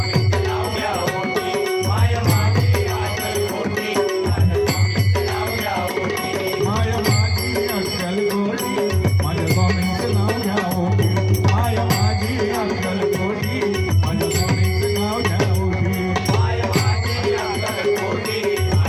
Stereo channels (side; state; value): both; identical; correlation 1.00